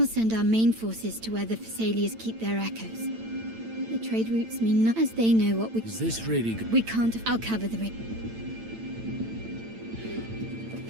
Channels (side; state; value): left; late; 8.9 ms